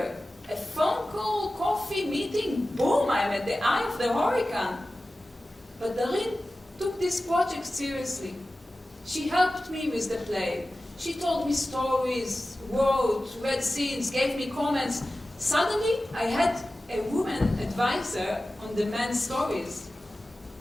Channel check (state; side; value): normal; both; correlation 0.95